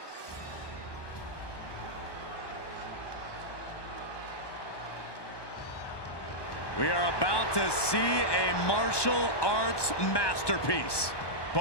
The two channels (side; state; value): right; late; 1.2 ms